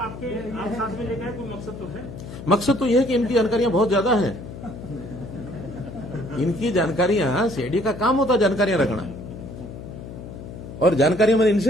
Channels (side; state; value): left; noise; hum, 12 dB below the sound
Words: साथ में लेकर कोई मकसद तो है? मकसद तो यह है कि इनकी जानकारियां बहुत ज्यादा हैं। इनकी जानकारियां, सीआईडी का काम होता है जानकारियां रखना, और जानकारियां मैंने